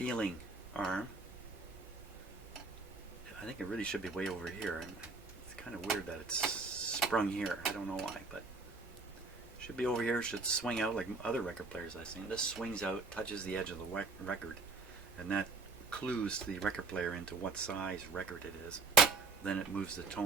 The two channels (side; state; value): left; quieter; 3.9 dB